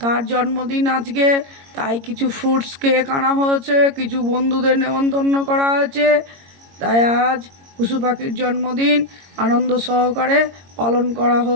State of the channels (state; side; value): late; left; 22 ms